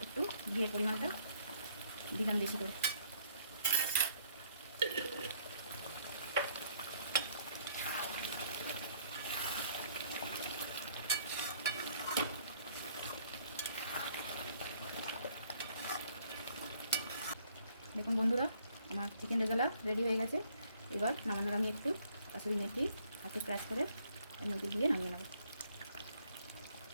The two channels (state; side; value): inverted; both; correlation -0.64